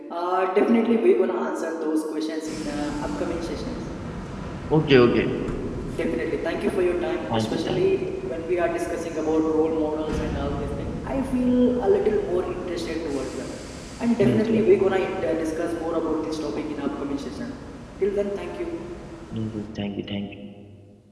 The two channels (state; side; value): identical; both; correlation 1.00